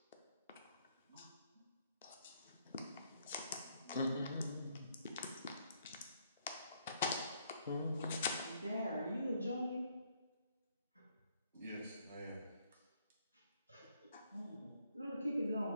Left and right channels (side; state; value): both; inverted; correlation -0.70